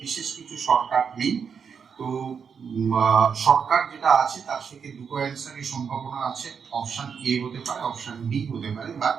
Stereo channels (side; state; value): left; quieter; 6.5 dB